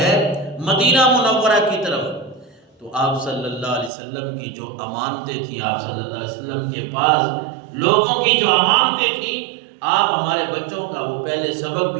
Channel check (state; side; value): drops out; left; at 3.9 s